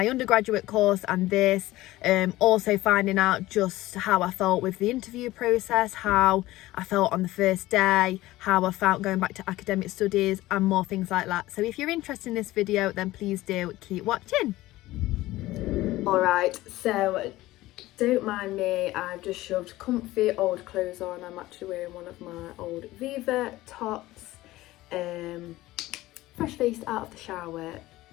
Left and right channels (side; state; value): right; quieter; 17.3 dB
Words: undergraduate course and this, also finding out just how I felt with the interview process, how I felt on the first day, how I felt going back to academic studies and more things like that. So if you're interested in this video, then please do keep watching. Alright, so don't mind me, I've just shoved comfy old clothes on. I'm actually wearing one of my old Viva tops. Fresh faced out of the shower,